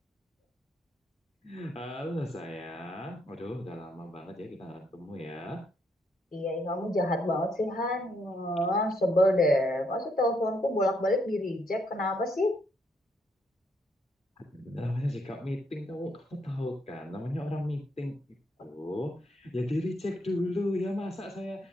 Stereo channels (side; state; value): both; normal; correlation 0.74